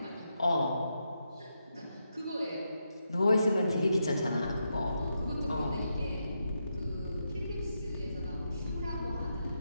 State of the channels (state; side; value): inverted; both; correlation -0.84